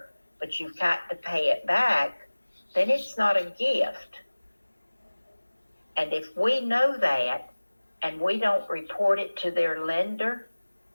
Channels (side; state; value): both; inverted; correlation -1.00